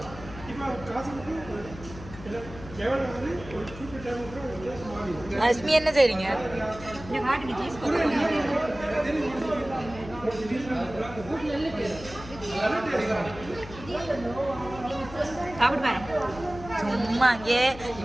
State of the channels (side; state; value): left; noise; hum, 14 dB below the sound